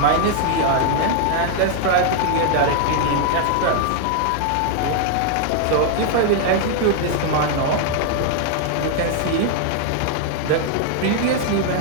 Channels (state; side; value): different; both; correlation 0.00